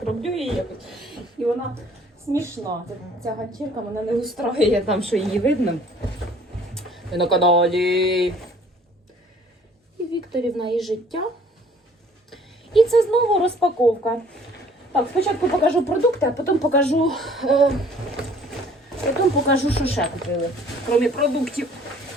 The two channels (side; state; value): both; normal; correlation 0.55